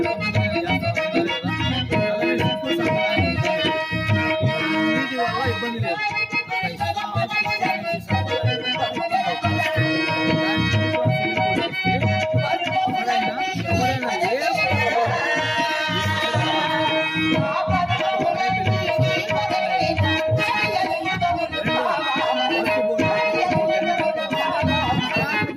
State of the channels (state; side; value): identical; both; correlation 1.00